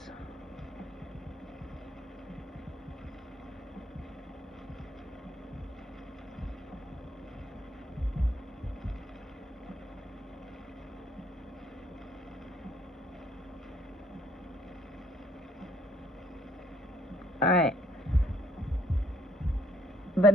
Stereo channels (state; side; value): normal; both; correlation 0.65